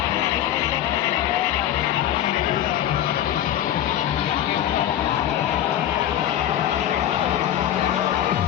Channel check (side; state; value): right; quieter; 11.7 dB